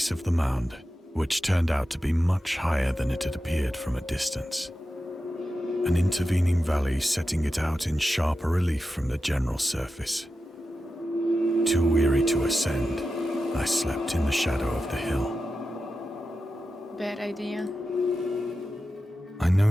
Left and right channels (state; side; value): normal; both; correlation 0.91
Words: of the mound, which turned out to be much higher than it had appeared from a distance. An intervening valley setting it out in sharper relief from the general surface. Too weary to ascend, I slept in the shadow of the hill. Bad idea. I